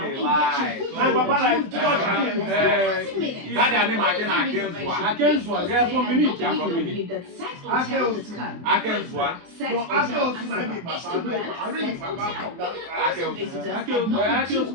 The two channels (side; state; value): left; late; 23 ms